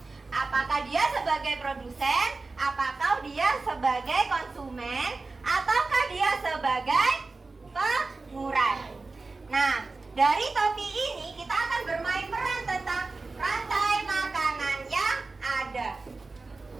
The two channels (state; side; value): quieter; left; 3.7 dB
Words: Apakah dia sebagai produsen, apakah dia sebagai konsumen, ataukah dia sebagai pengurai. Nah, dari topi ini kita akan bermain peran tentang rantai makanan yang ada.